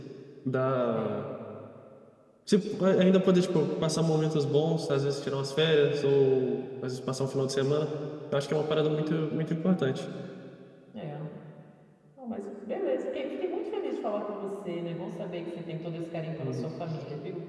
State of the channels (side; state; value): both; identical; correlation 1.00